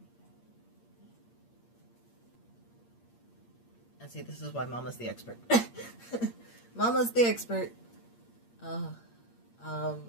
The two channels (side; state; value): right; late; 8.6 ms